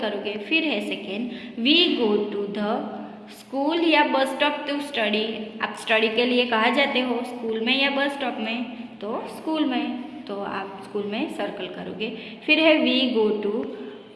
करोगे। फिर है second, we go to the school या बस स्टॉप टू स्टडी, आप स्टडी के लिए कहाँ जाते हो? स्कूल में या बस स्टॉप में? तो स्कूल में, तो आप स्कूल में सर्कल करोगे। फिर है वी गो टू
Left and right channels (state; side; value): identical; both; correlation 1.00